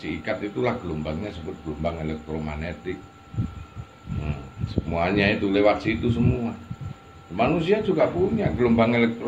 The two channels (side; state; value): both; identical; correlation 1.00